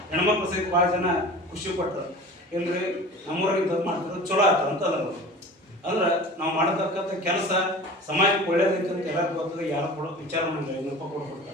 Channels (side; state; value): both; normal; correlation 0.39